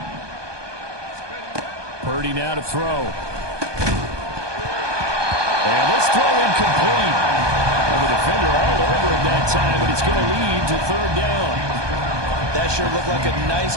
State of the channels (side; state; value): left; late; 1.2 ms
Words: Purdy now to throw. And this throw incomplete. Well, the defender all over it that time, but it's going to lead to 3rd down. That sure looked like a nice